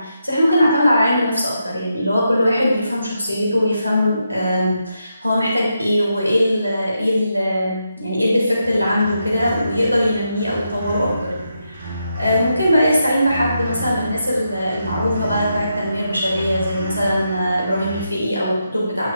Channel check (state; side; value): inverted; both; correlation -0.83